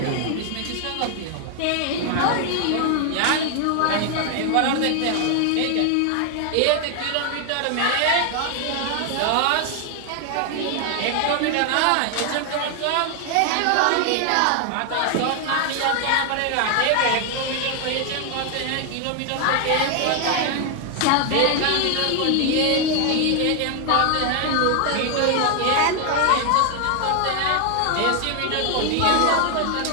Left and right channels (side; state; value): both; different; correlation 0.00